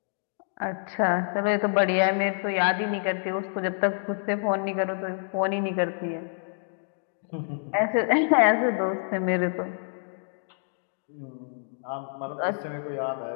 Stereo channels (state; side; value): silent; right; digital silence